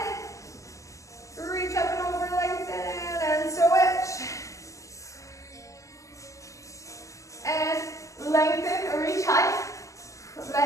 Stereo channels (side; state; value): right; late; 0.15 ms